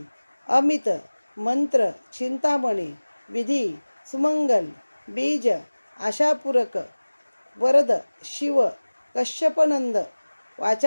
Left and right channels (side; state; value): both; inverted; correlation -1.00